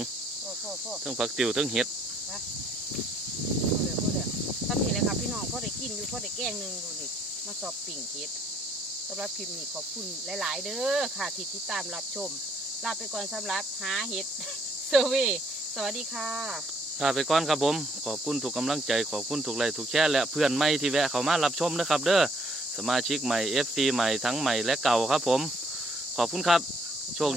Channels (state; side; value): normal; both; correlation 0.65